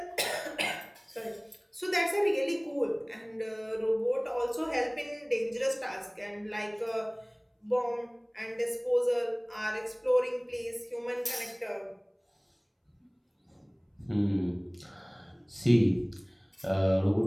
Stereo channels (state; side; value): identical; both; correlation 1.00